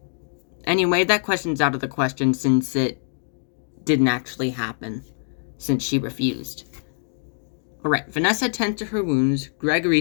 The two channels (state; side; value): silent; right; 62 dB below the other